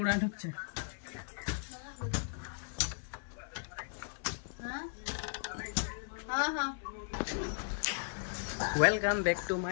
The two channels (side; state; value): right; silent; 53 dB below the other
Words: ঢুকছে। Welcome back to